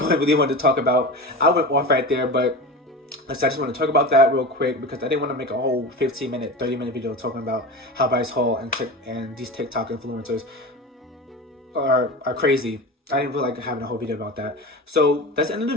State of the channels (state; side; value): normal; both; correlation 0.29